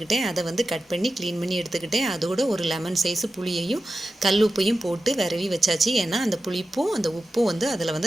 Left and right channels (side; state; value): both; normal; correlation 0.92